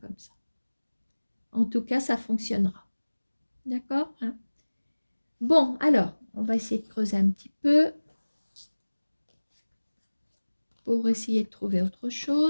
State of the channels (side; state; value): both; inverted; correlation -1.00